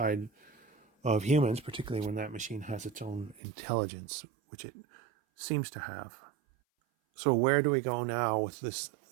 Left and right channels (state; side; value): drops out; left; at 3.4 s